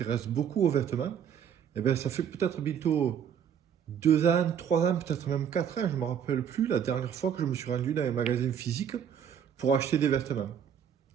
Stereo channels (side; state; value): left; quieter; 8.4 dB